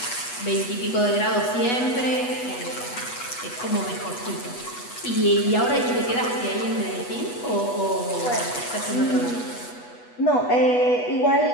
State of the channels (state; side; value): late; right; 8.2 ms